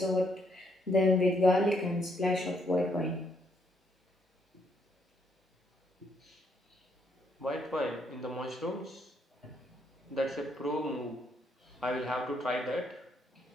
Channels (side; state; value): both; normal; correlation 0.73